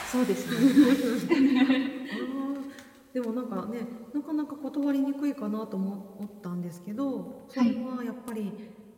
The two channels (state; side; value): identical; both; correlation 1.00